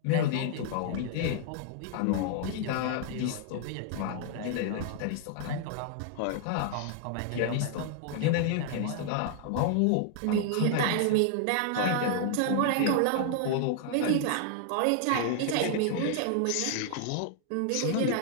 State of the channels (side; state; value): both; different; correlation 0.00